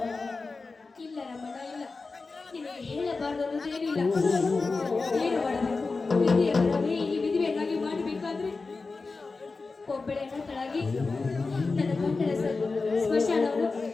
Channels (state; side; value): quieter; right; 4.0 dB